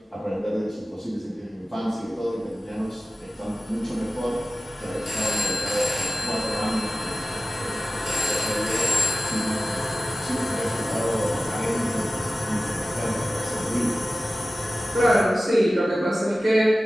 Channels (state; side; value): normal; both; correlation 0.95